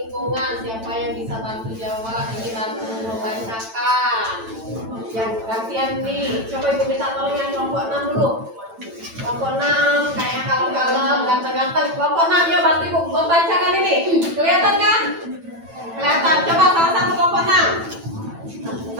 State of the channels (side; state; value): left; late; 9.0 ms